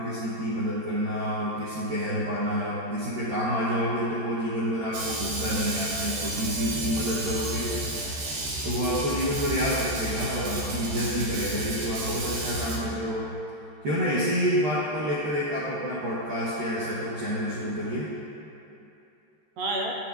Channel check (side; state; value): left; late; 13 ms